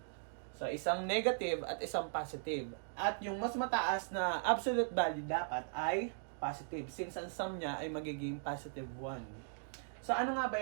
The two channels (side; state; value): left; silent; digital silence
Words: So, isang negative at isang positive. At yung mas mataas na absolute value dapat ay positive, since ang sum niya ay magiging positive 1. So, ano nga ba